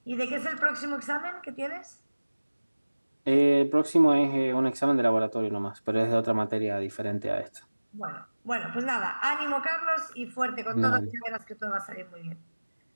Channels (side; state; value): both; inverted; correlation -1.00